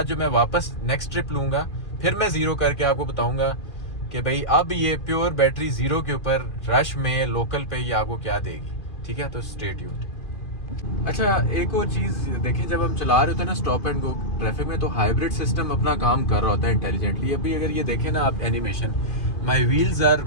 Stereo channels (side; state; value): right; late; 2.5 ms